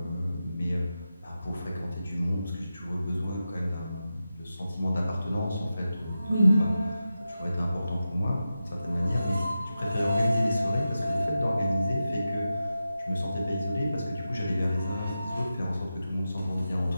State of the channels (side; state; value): both; inverted; correlation -0.91